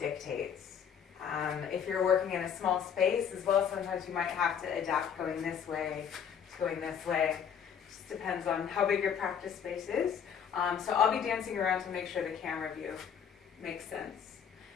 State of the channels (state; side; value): quieter; right; 7.9 dB